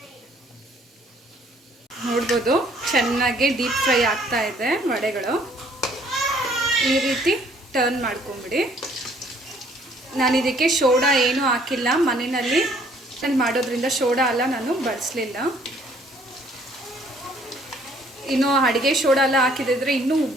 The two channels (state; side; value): normal; both; correlation 0.61